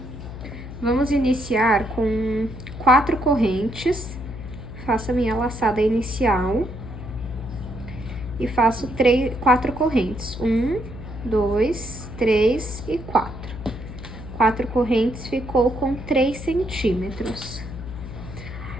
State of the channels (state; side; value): noise; left; hum, 11 dB below the sound